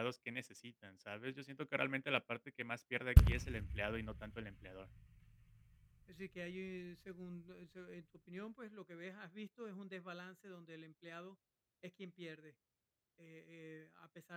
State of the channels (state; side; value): identical; both; correlation 1.00